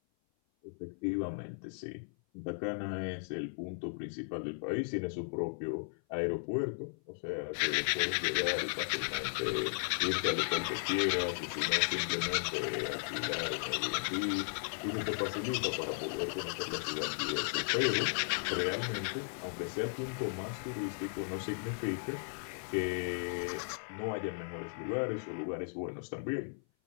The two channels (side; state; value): right; silent; 54 dB below the other